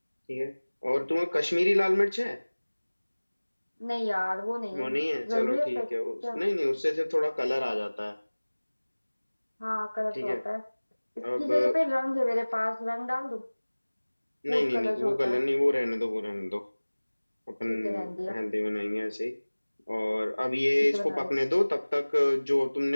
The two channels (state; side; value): inverted; both; correlation -1.00